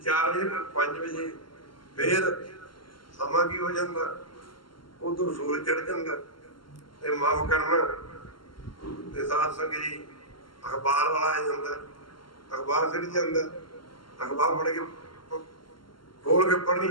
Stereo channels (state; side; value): late; right; 0.72 ms